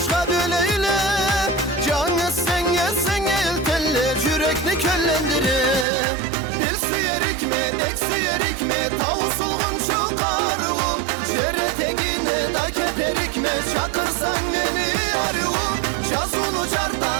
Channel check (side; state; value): left; drops out; at 5.9 s